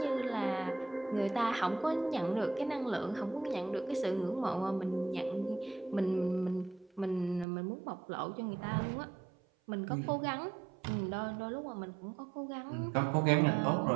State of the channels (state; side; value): drops out; left; at 7.5 s